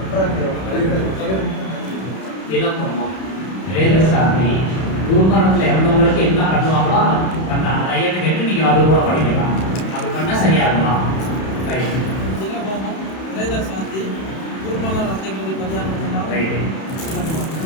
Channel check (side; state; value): right; late; 31 ms